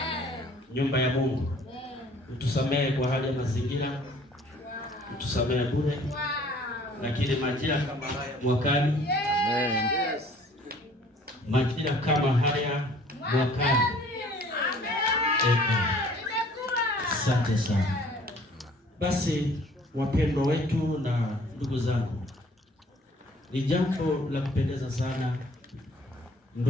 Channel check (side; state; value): both; normal; correlation 0.55